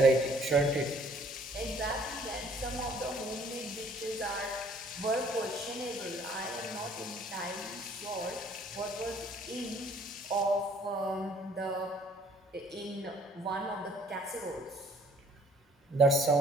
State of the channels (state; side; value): normal; both; correlation 0.59